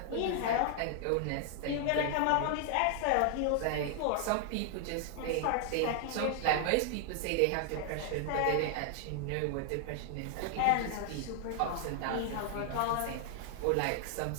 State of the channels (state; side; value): different; both; correlation 0.00